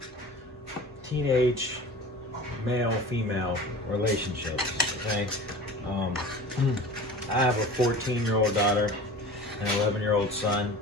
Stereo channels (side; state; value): both; normal; correlation 0.38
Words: teenage male-female relationships, okay? I have a 14-year-old daughter and an 11-year-old son,